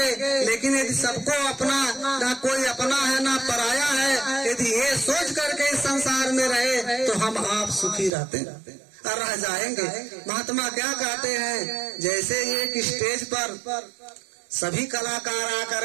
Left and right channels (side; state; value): left; drops out; at 8.1 s